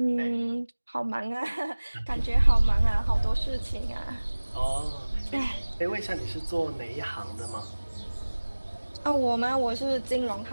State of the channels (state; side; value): inverted; both; correlation -1.00